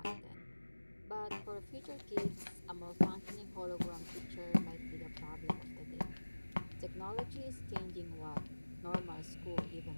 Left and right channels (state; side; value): inverted; both; correlation -1.00